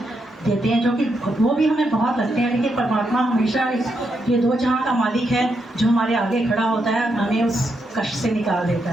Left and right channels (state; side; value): normal; both; correlation 0.81